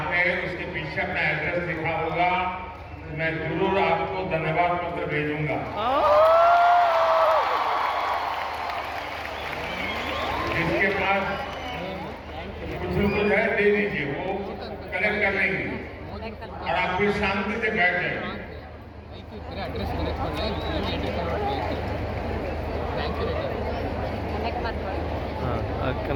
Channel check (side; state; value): both; identical; correlation 1.00